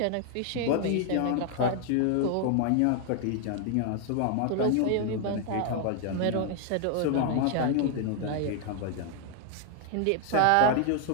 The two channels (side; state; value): both; different; correlation 0.00